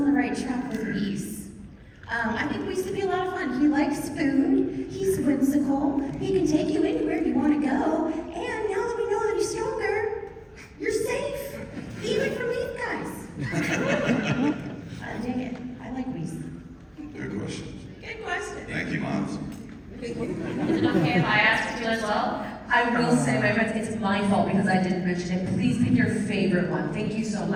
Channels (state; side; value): identical; both; correlation 1.00